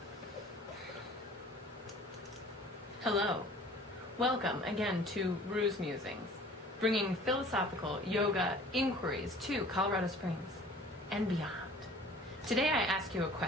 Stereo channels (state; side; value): normal; both; correlation 0.48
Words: Hello. Welcome again to Rue's Musings, bringing philosophical yoga inquiries to Colorado Springs and beyond. Today I ask you a